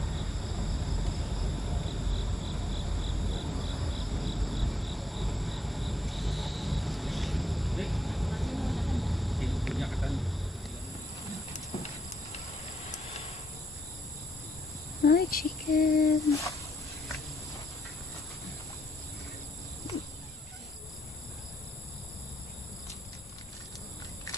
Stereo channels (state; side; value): normal; both; correlation 0.78